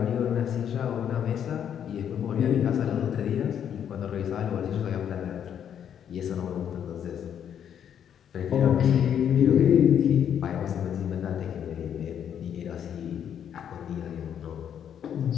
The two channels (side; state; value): right; quieter; 9.0 dB